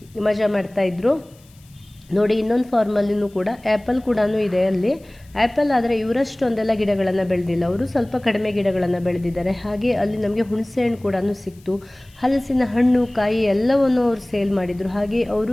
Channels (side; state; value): left; noise; hiss, 29 dB below the sound